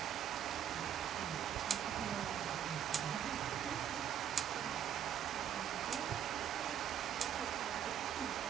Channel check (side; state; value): left; quieter; 9.3 dB